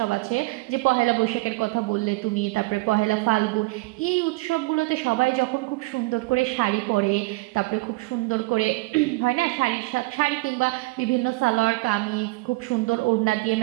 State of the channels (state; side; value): quieter; left; 22.8 dB